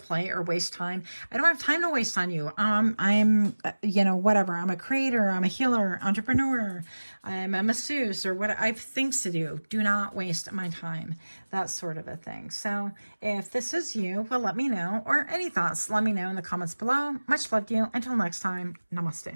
or waste time, I don't have time to waste on you. I'm, you know, whatever. I'm a creator. I'm a healer, entrepreneur. I'm a masseuse, or what. I have things to do. Do not waste my time. That sort of a thing. So if this is you, well, let me know. Or any thoughts, let me know in the comments below. Much love to you. Until next time,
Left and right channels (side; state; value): both; inverted; correlation -1.00